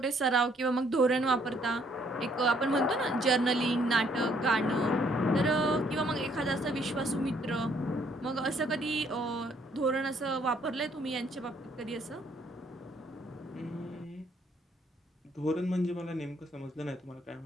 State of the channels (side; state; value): both; normal; correlation 0.66